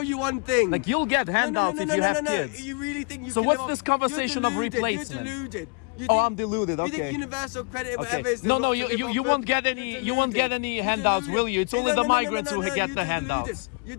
you one thing. Like you'll get handouts if you have kids. You really think you So can what's live this off- conversation you're of deluded, replacement? You're deluded. You Oh, think- I'm deluded. You Okay. think universal credit, Okay. whatever is. No, not to you live off won't of, get you're any. You deluded. won't get any You're handouts, deluded. will you? It's only the migrants who you're get the deluded. handouts. You're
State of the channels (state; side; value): quieter; right; 34.6 dB